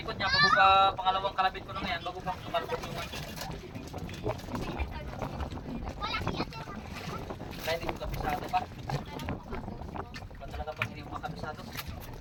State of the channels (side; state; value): both; identical; correlation 1.00